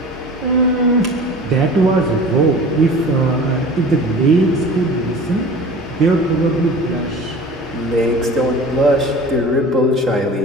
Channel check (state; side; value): normal; both; correlation 0.40